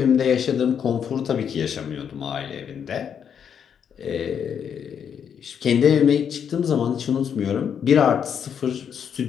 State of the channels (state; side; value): quieter; right; 7.9 dB